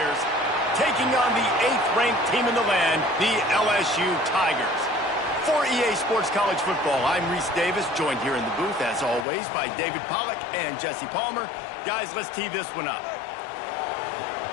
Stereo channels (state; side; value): drops out; right; at 9.2 s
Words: taking on the 8th-ranked team in the land, the LSU Tigers. For EA Sports College Football, I'm Reese Davis, joined here in the booth, as always, by David Pollack and Jesse Palmer. Guys, let's tee this one up.